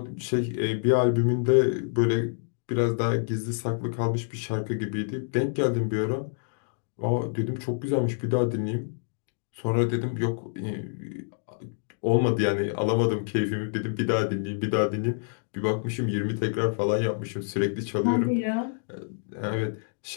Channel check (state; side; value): silent; right; digital silence